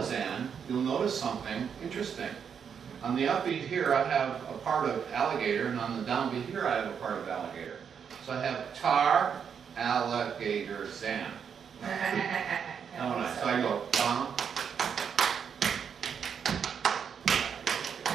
you'll notice something interesting. On the upbeat here, I have a part of alligator, and on the downbeat here, I have a part of alligator. So I have tar, alligator, zan. So I go, bum.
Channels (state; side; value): quieter; left; 7.2 dB